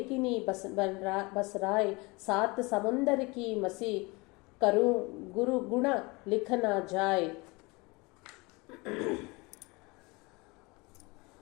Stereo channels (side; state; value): right; quieter; 25.7 dB